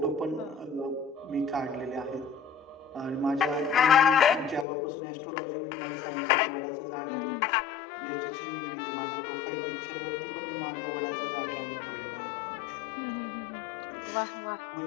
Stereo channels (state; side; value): drops out; right; at 4.7 s